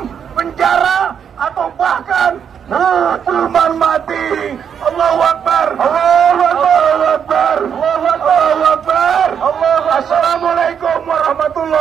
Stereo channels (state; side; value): quieter; left; 7.8 dB